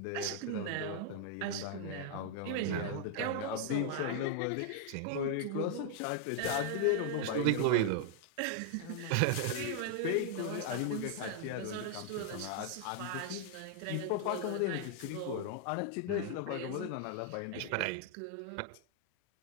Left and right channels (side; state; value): both; different; correlation 0.00